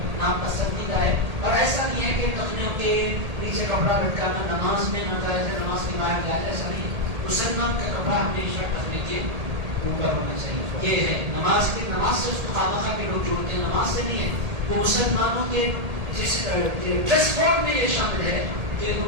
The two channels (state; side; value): late; left; 1.8 ms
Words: نام پسندیدہ ہے. اور ایسا نہیں ہے کہ ٹخنوں کے نیچے کپڑا لٹکانا نماز میں ناجائز ہے نماز کے باہر کیا ہے. ایسا نہیں ہے. مسلمان کا کپڑا ہمیشہ ٹخنے کے اوپر ہونا چاہیے. یہ ہے نماز سے اس کو خامخواہ کے لوگ جوڑتے ہیں نماز سے نہیں ہے. وہ مسلمانوں کے جس ڈریس کوڈ میں یہ شامل ہے کہ